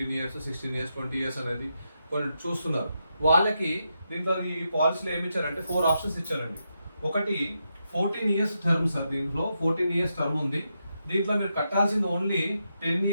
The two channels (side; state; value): both; inverted; correlation -0.84